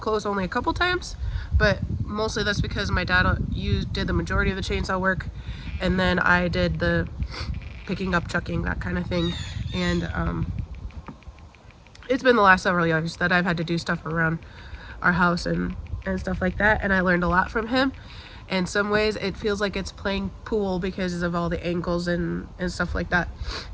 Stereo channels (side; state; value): both; identical; correlation 1.00